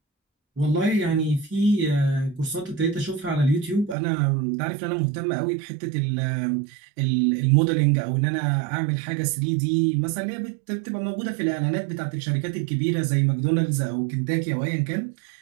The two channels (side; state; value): left; drops out; at 4.0 s